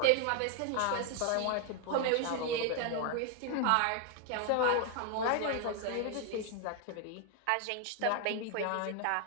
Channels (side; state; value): both; different; correlation 0.00